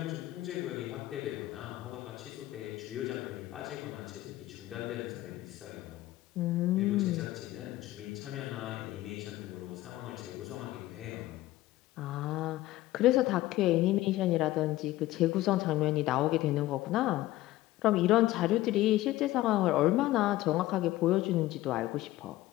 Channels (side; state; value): right; quieter; 16.4 dB